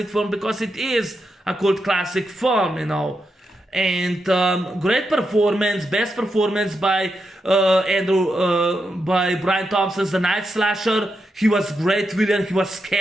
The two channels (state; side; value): normal; both; correlation 0.85